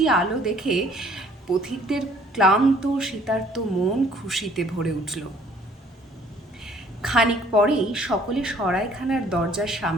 আলো দেখে পথিকদের ক্লান্ত শীতার্ত মন খুশিতে ভরে উঠল। খানিক পরেই সকলে সরাইখানার দরজার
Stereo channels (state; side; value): normal; both; correlation 0.58